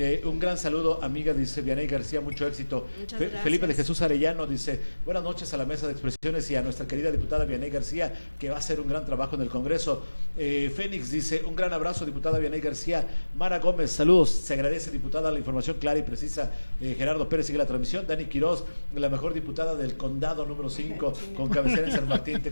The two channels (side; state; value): both; inverted; correlation -1.00